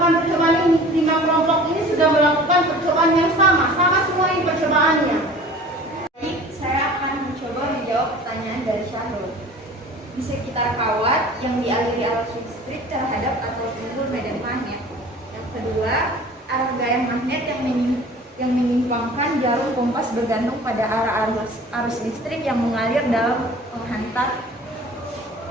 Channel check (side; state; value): both; normal; correlation 0.44